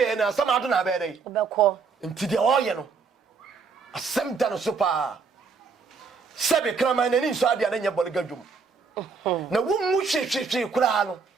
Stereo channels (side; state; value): left; quieter; 5.0 dB